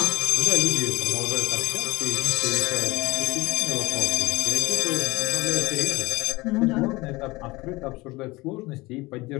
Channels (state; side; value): quieter; right; 21.8 dB